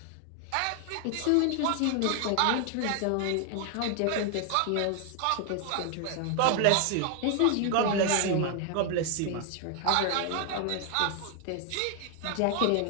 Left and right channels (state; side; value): different; both; correlation 0.01